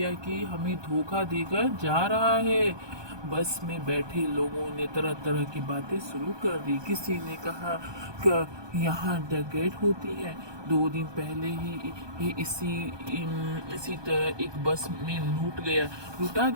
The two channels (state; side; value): late; left; 1.2 ms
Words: कि हमें धोखा देकर जा रहा है। बस में बैठे लोगों ने तरह तरह की बातें शुरू कर दी। किसी ने कहा कि यहाँ डकैत होती है। 2 दिन पहले ही इसी तरह एक बस में लूटा